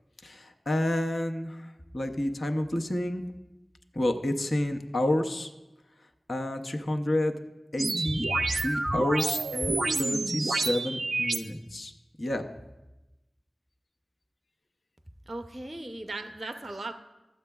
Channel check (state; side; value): normal; both; correlation 0.95